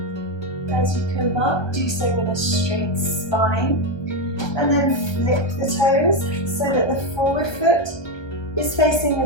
As you come up, do so with a straight spine. And then flip the toes so that the forward foot is facing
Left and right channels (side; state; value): right; late; 1.3 ms